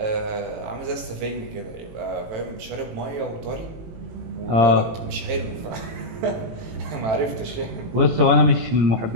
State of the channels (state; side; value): late; left; 18 ms